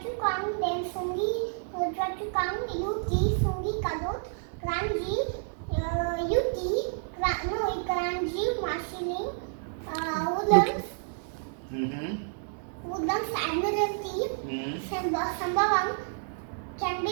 then Sungi, Choa Chu Kang, UT, Sungi Kadot, Kranji, UT, Kranji, Marsiling, Woodlands, Woodlands, Admiralty, Sembawang,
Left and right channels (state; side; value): silent; left; 58 dB below the other